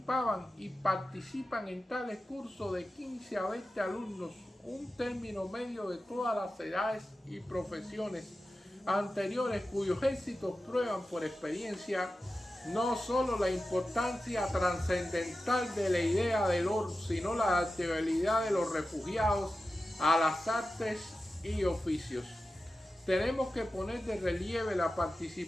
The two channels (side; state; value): both; normal; correlation 0.93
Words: y participan en tales cursos de 15 a 20 alumnos, un término medio de todas las edades y profesiones anteriores, cuyos éxitos prueban por experiencia no solo la importancia trascendental de la idea del orden, sino la adaptabilidad de los refugiados a las artes y oficios. Tenemos que poner de relieve la